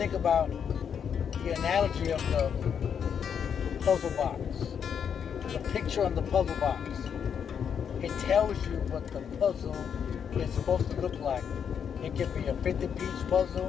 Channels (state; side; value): quieter; right; 7.6 dB